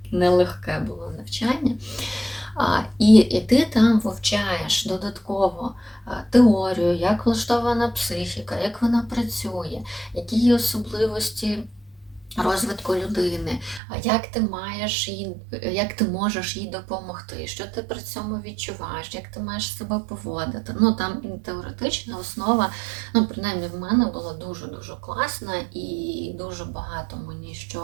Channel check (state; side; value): drops out; left; at 13.8 s